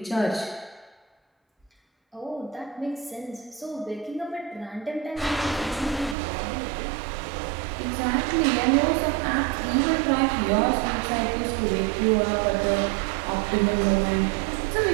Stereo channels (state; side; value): drops out; left; at 6.2 s